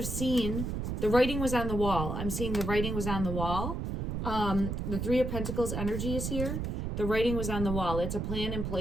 seen. The writing was on the wall. I'm seeing the writing was on the wall. The Three of Pentacles energy is here. The writing was on the wall. It's a plan in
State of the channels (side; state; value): right; noise; rumble, 2 dB below the sound